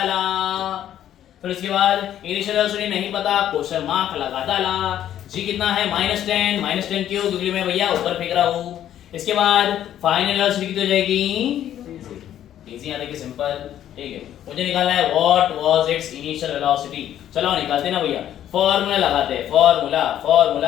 फिर उसके बाद इनिशियल वेलोसिटी नहीं पता, क्वेश्चन मार्क लगा डाला। जी कितना है? -10। -10 क्यों? क्योंकि मैं भैया ऊपर फेंक रहा हूं। इसके बाद फाइनल वेलोसिटी कितनी हो जाएगी? इजी आने की सिंपल। ठीक है, मुझे निकालना है what was it's initial velocity. चलो निकालते ना भैया, फॉर्मूला लगाते हैं, फॉर्मूला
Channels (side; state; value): right; quieter; 11.2 dB